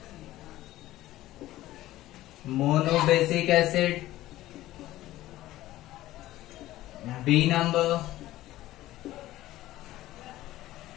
Monobasic acid. B number.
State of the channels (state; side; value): quieter; right; 15.5 dB